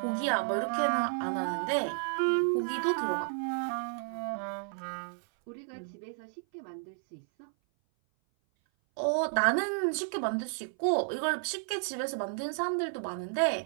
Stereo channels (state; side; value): silent; left; 56 dB below the other